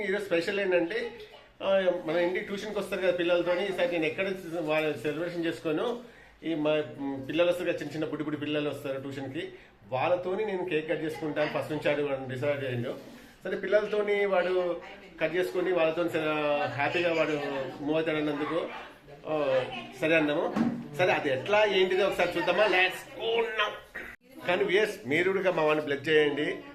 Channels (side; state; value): both; identical; correlation 1.00